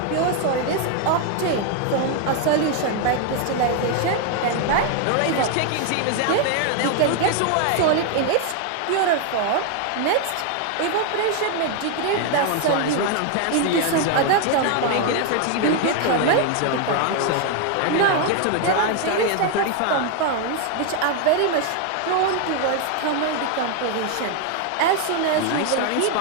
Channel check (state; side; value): different; both; correlation 0.01